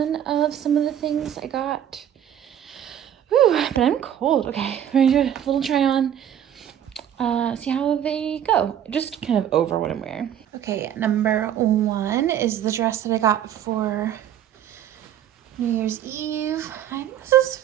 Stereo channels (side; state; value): left; quieter; 10.2 dB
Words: of some of the things I got. Whew, but I'm cold. Okay, we're gonna do a little try on. See how they go. Just kind of over what I'm wearing. Okay, number 1 is the dress that I got for New Year's Eve. I think this is